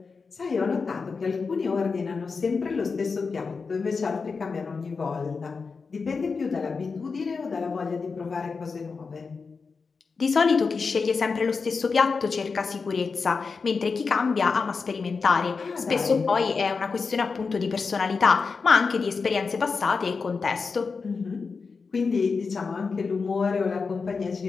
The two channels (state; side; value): quieter; right; 4.8 dB